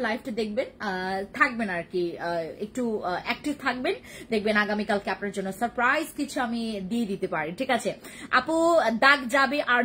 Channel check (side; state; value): both; identical; correlation 1.00